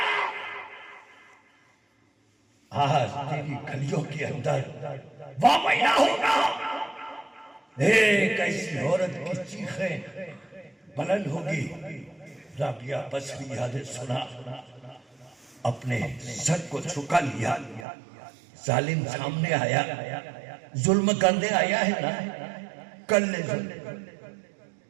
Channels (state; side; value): drops out; left; at 17.9 s